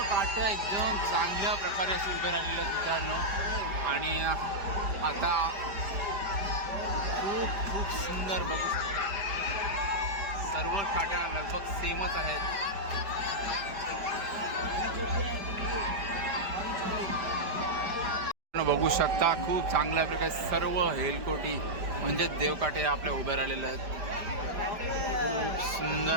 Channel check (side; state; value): left; late; 5.1 ms